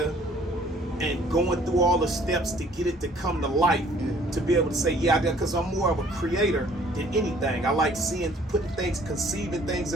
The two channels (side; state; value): both; normal; correlation 0.57